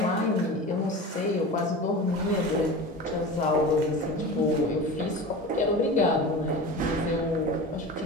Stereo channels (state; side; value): normal; both; correlation 0.31